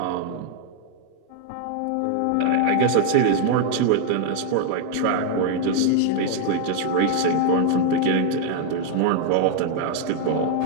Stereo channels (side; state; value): both; different; correlation 0.00